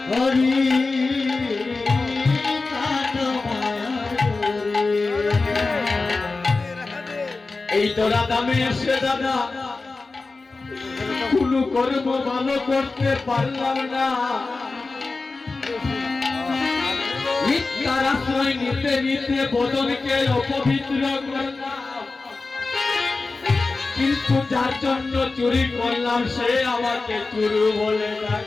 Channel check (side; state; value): right; quieter; 3.7 dB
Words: হরি এই তো রাধামে এসে দাদা কোন কর্ম ভালো করতে পারলাম না, মিথ্যার আশ্রয় নিতে নিতে বদনকে অপবিত্র করলাম, কিন্তু যার জন্য চুরি করলাম সে আমাকে চুরু বলে